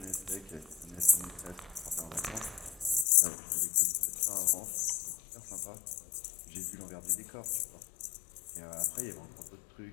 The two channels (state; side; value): drops out; right; at 3.1 s